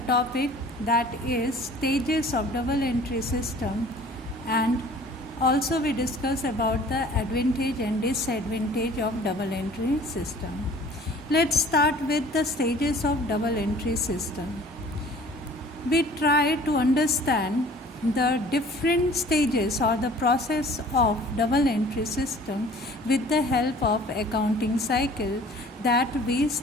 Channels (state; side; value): normal; both; correlation 0.50